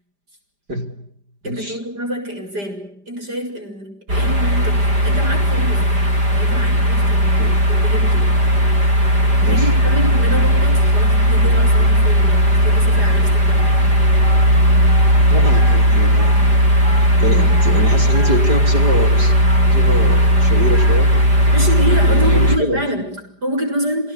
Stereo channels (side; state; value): left; late; 5.0 ms